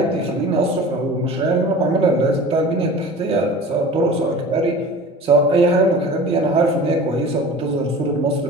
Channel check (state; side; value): normal; both; correlation 0.39